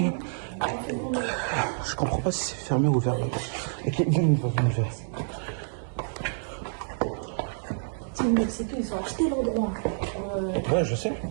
Je comprends pas si c'est fermé ou ouvert. Ok, viens, on va. C'est mec, c'est tout, ils ont acheté l'endroit. Ouais, je sais.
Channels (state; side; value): silent; left; digital silence